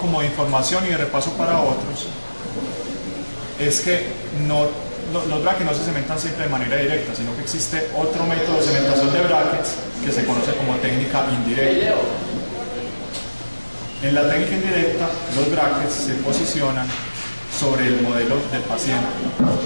de información y de repaso para otros, es que los brackets no se cementan siempre de manera directa, sino que existe otro método de cementación de brackets que se conoce como técnica indirecta. En la técnica indirecta, los brackets se posicionan sobre el modelo del paciente.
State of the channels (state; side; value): inverted; both; correlation -1.00